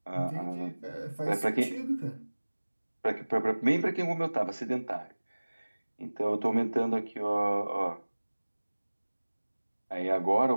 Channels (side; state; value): both; inverted; correlation -1.00